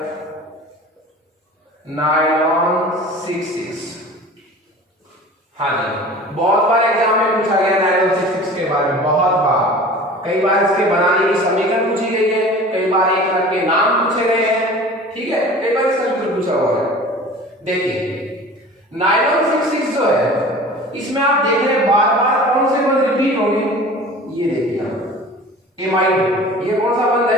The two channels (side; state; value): both; normal; correlation 0.41